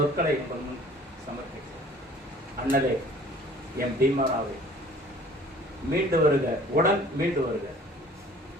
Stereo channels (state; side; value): normal; both; correlation 0.51